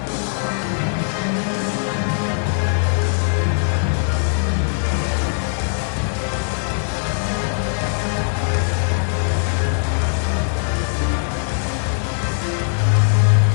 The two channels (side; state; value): right; silent; 59 dB below the other